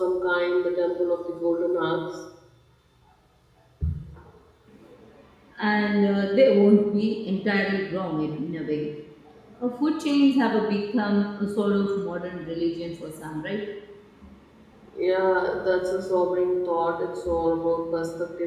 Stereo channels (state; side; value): identical; both; correlation 1.00